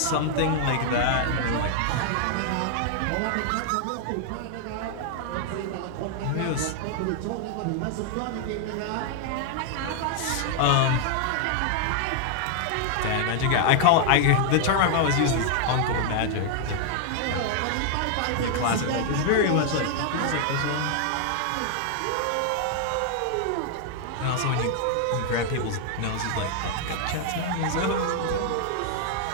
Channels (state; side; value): different; both; correlation 0.00